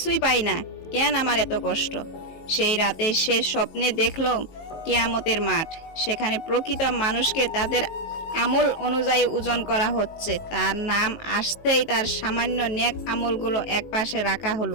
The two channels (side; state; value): right; late; 19 ms